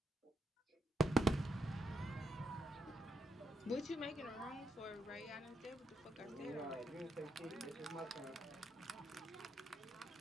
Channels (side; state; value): both; normal; correlation 0.80